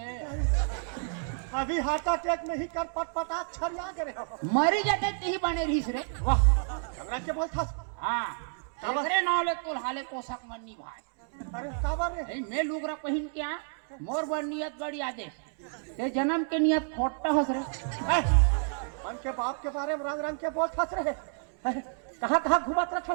अभी हार्ट अटैक में ही कर पट पटा छरिया गए हो। मरी जाते ही बने रहीस रे। वाह हमरा के बोल था। हाँ अरे नौले कुल हाले पोषक मन्नी भाई। अरे काबर रे ए, मैं लुगरा पहन के आ मोर बड़ नियत बड़ी आदेश ते जन्म के नियत खोटा हस रे। मन के बाप के बारे में रंग रंग के बोल फंस रहे कहाँ कहाँ घुमात रहे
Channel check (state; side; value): silent; left; 58 dB below the other